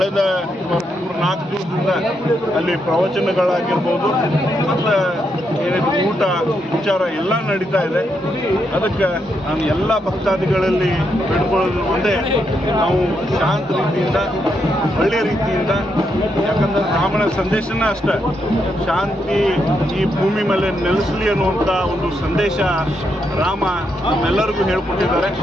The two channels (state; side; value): normal; both; correlation 0.80